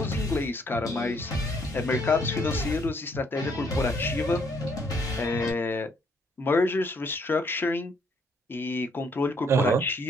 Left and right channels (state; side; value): normal; both; correlation 0.68